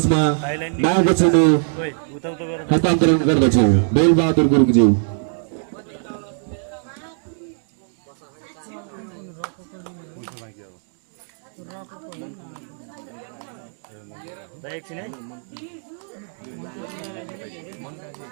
मायाको चिनो हस्तान्तरण गर्दछौँ। बेलबहादुर गुरुङज्यू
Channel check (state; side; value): silent; left; 63 dB below the other